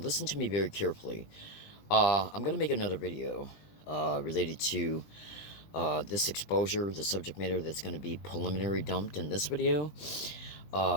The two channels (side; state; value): right; late; 20 ms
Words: to me very carefully. I'm going to make another video related to this exposure, the subject matter that's going to be preliminary dumped in this video.